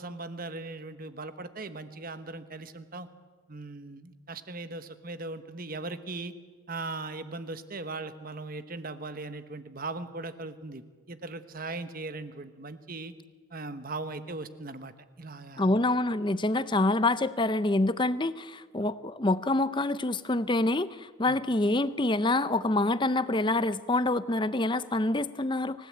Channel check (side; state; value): both; normal; correlation 0.53